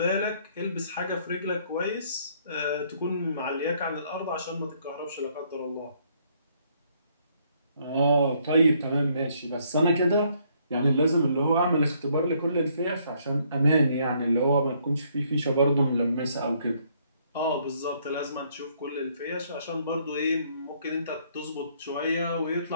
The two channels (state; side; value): inverted; both; correlation -0.68